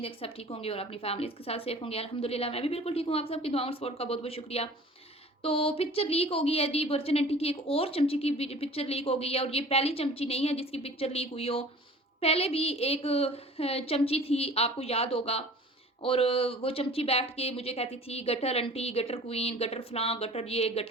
है कि सब ठीक होंगे और अपनी फैमिलीज़ के साथ सेफ होंगे। अल्हम्दुलिल्लाह मैं भी बिल्कुल ठीक हूँ। आप सबकी दुआ और सपोर्ट का बहुत-बहुत शुक्रिया। तो पिक्चर लीक हो गई है जी, वर्जिन आंटी की एक और चमची की पिक्चर लीक हो गई है और ये पहली चमची नहीं है जिसकी पिक्चर लीक हुई हो। पहले भी एक चमची थी, आपको याद होगा। और वो चमची बैठ के मुझे कहती थी gutter aunty, gutter queen, gutter फलां, गटर ये,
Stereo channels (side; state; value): both; normal; correlation 0.45